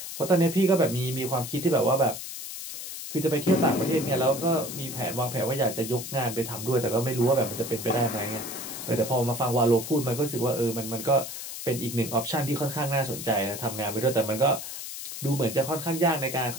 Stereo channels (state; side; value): noise; left; hiss, 8 dB below the sound